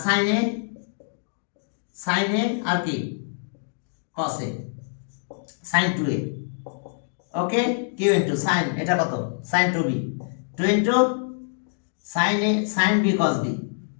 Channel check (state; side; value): silent; right; digital silence